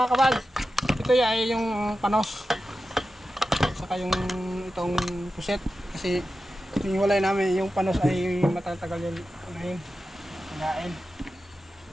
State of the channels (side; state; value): both; normal; correlation 0.92